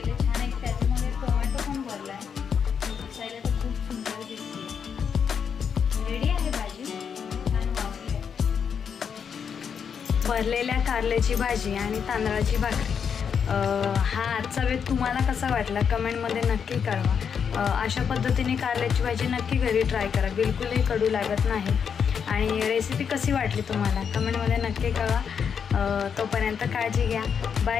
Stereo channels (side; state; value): right; quieter; 7.0 dB